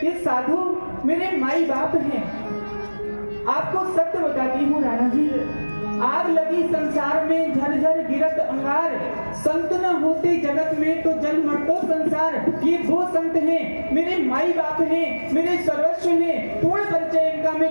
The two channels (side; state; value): both; inverted; correlation -1.00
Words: ये साधु मेरे माई बाप हैं। आपको सत्य बताती हूँ राणा जी, आग लगी संसार में झरझर गिरत अंगार, संत न होते जगत में तो जल मरतो संसार। ये वो संत हैं, मेरे माई बाप हैं, मेरे सर्वस्व हैं। पूर्ण परिचय इनका